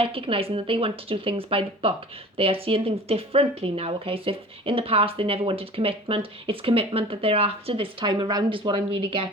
that they want to do things by the book. They are seeing things differently now, okay? So if in the past they never wanted commitment, it's commitment that they're after this time around is what I'm really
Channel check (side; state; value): both; normal; correlation 0.41